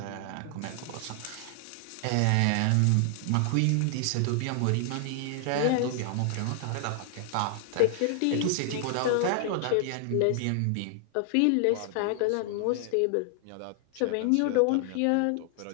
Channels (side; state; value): both; different; correlation 0.00